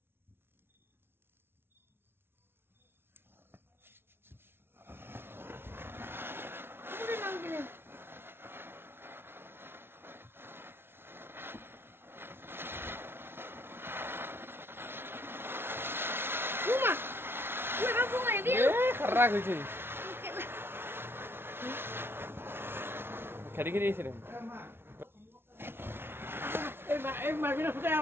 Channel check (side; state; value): left; late; 0.11 ms